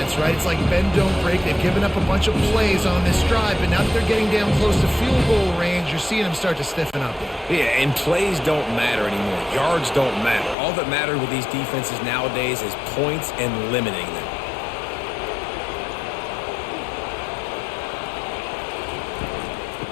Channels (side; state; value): right; drops out; at 10.6 s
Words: right? It's like bend, don't break. They've given up a bunch of plays on this drive, but now that they're getting down close to field goal range, you're seeing them start to stiffen up. Yeah, and plays don't matter anymore. Yards don't matter. All that matters with these defenses nowadays is points and limiting them.